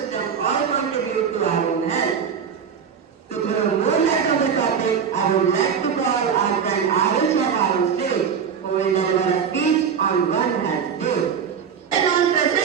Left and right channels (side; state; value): left; quieter; 7.1 dB